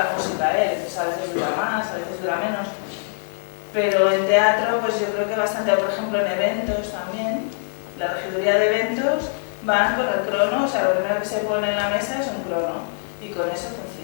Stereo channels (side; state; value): right; silent; digital silence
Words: música. A veces dura más, a veces dura menos. Pero en teatro, pues yo creo que bastante, por ejemplo, en eventos también, la regiduría de eventos van con el crono, o sea, lo primero que se pone en la mesa es un crono, y con eso